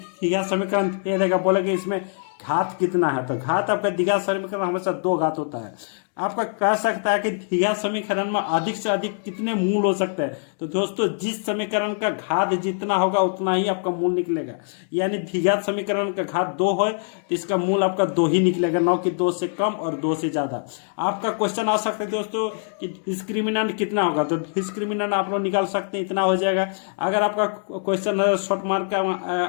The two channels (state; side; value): silent; right; 63 dB below the other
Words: समीकरण दे देगा, बोलेगा इसमें घात कितना है, तो घात आपका द्विघात समीकरण हमेशा 2 घात होता है। आपका कह सकता है कि द्विघात समीकरण में अधिक से अधिक कितने मूल हो सकते हैं, तो दोस्तों जिस समीकरण का घात जितना होगा उतना ही आपका मूल निकलेगा। यानी द्विघात समीकरण का घात 2 है तो इसका मूल आपका 2 ही निकलेगा, न कि 2 से कम और 2 से ज्यादा। आपका क्वेश्चन आ सकता है दोस्तों कि डिस्क्रिमिनेंट कितना होगा, तो डिस्क्रिमिनेंट आप लोग निकाल सकते हैं, इतना हो जाएगा। अगर आपका क्वेश्चन शॉर्ट मार्क